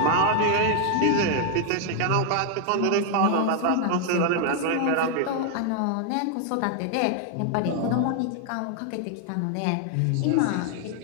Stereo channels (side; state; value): both; different; correlation 0.00